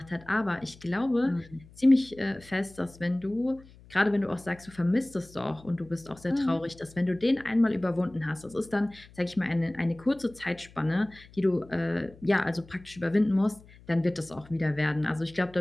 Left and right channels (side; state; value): left; noise; hum, 23 dB below the sound